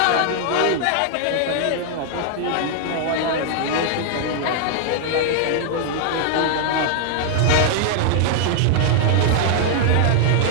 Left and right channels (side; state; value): both; different; correlation 0.00